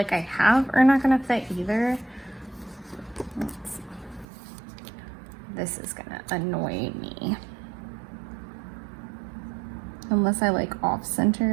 I have are not gonna fit either. This is gonna annoy me. Unless I like off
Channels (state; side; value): drops out; left; at 4.2 s